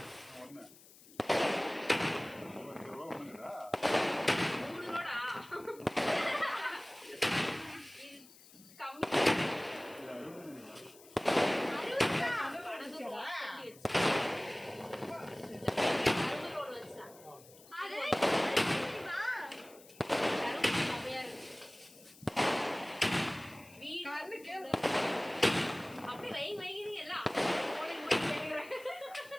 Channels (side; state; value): left; noise; hiss, 22 dB below the sound